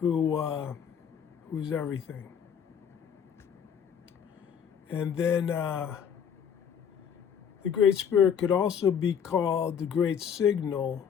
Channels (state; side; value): quieter; right; 7.7 dB